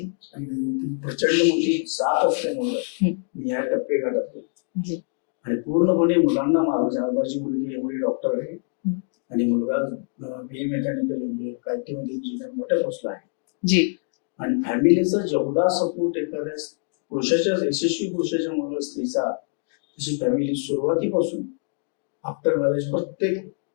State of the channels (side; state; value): right; silent; 56 dB below the other